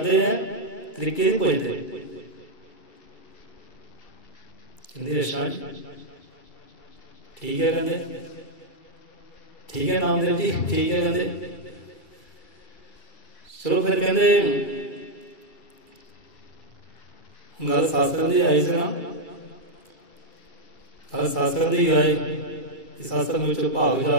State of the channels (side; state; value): right; late; 2.3 ms